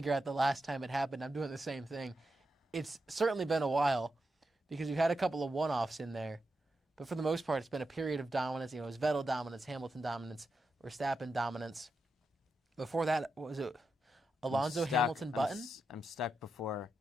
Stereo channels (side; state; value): both; normal; correlation 0.87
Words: out the last time it happened. I'm doing the same thing. It's certainly been a while because we've had a couple of one-offs in there. But for the most part, it's been a period of dominance. It was Vettel dominance, Hamilton dominance, Verstappen dominance. Before that, what was it? Alonso, Hamilton, Button? I'm stuck before.